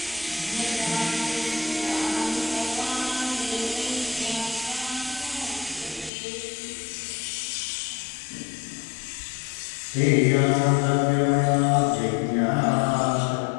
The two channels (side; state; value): right; drops out; at 6.1 s